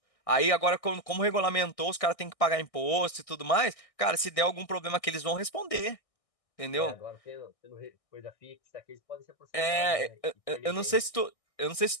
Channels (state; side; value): late; right; 1.6 ms